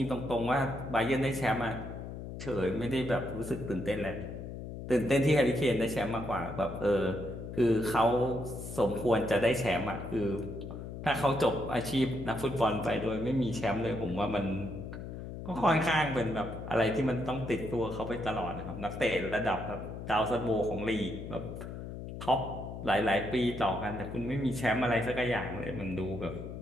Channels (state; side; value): noise; left; hum, 9 dB below the sound